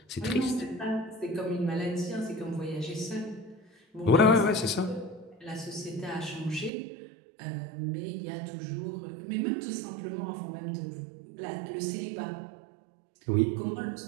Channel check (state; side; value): drops out; left; at 6.7 s